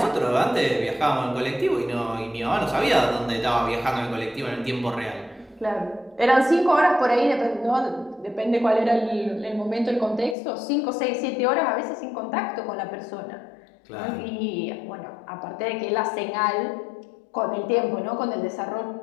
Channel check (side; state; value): right; drops out; at 10.4 s